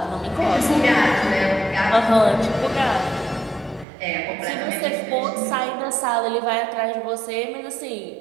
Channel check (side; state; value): left; drops out; at 3.9 s